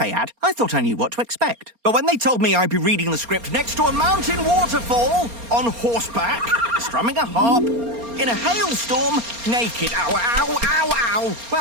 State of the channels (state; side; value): late; left; 4.3 ms